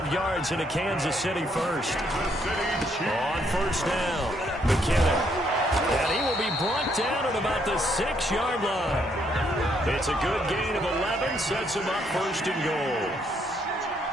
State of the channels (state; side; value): normal; both; correlation 0.72